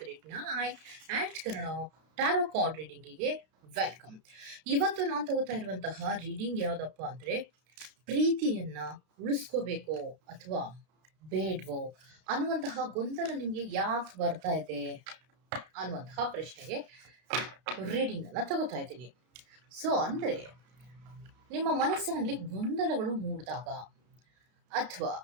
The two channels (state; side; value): late; left; 33 ms